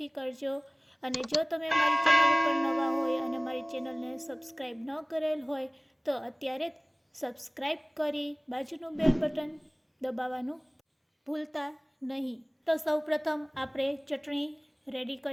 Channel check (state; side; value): identical; both; correlation 1.00